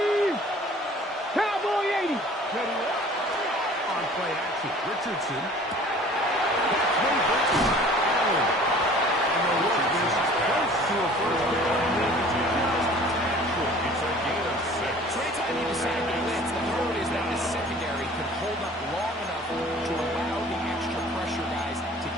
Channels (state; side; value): normal; both; correlation 0.48